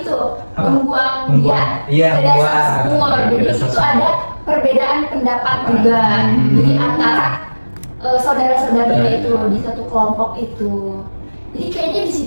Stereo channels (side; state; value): both; inverted; correlation -1.00